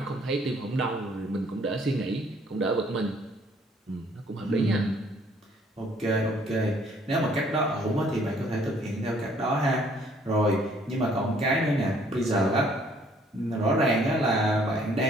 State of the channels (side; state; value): both; normal; correlation 0.62